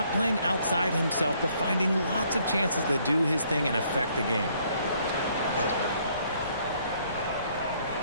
playing outside himself, but finding lots of chances to do his thing and affect the game.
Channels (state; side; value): inverted; both; correlation -0.66